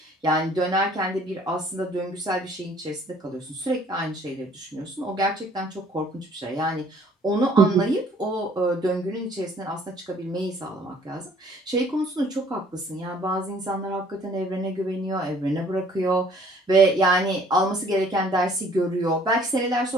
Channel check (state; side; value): normal; both; correlation 0.57